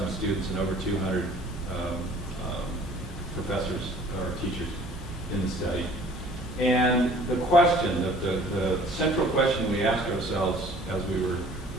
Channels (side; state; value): both; normal; correlation 0.52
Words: students and over 200 professors or teachers in the study. And the question, the central question we asked ourselves as we were